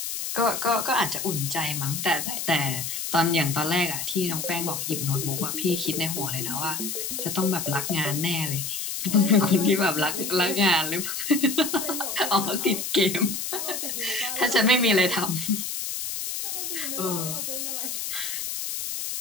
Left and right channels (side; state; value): left; noise; hiss, 4 dB below the sound